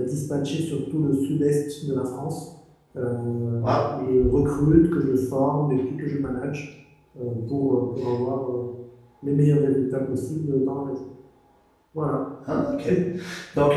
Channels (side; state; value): both; identical; correlation 1.00